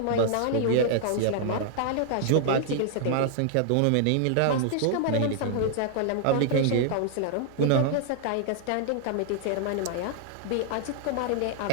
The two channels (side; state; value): both; different; correlation -0.01